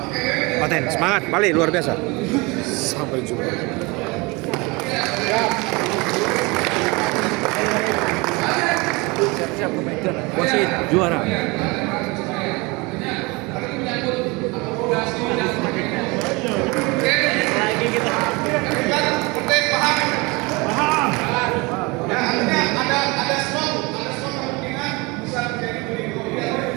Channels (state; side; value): quieter; left; 25.9 dB